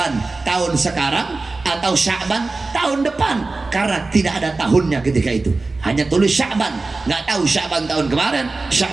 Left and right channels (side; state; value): left; quieter; 3.5 dB